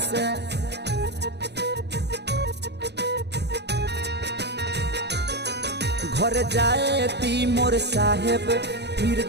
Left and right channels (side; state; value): left; late; 0.49 ms